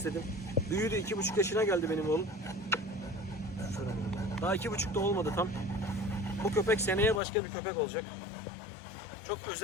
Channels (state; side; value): drops out; right; at 7.2 s